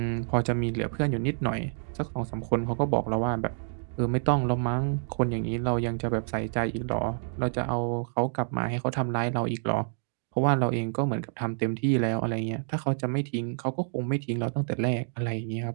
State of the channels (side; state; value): left; silent; digital silence